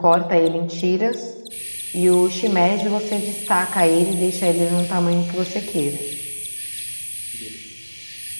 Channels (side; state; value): both; inverted; correlation -1.00